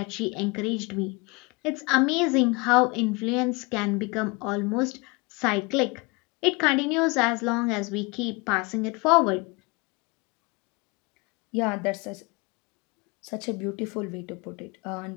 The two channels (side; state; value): right; quieter; 27.6 dB